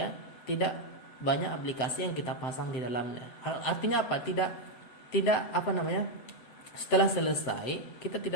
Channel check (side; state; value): right; late; 7.8 ms